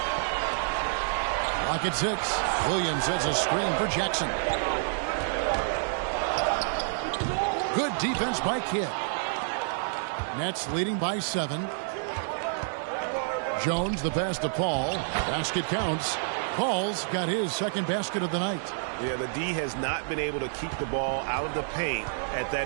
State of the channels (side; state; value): left; silent; digital silence